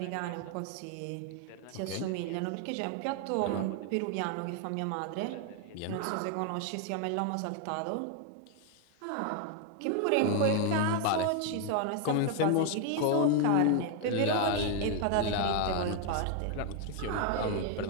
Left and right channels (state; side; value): different; both; correlation 0.01